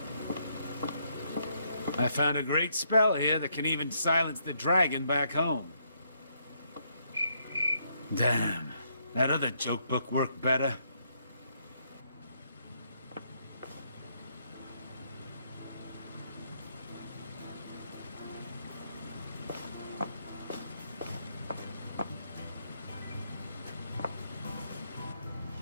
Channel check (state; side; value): inverted; both; correlation -0.74